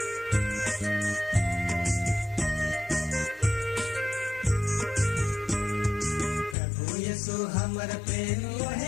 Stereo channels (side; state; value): right; drops out; at 6.6 s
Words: यीशु हमर प्रेम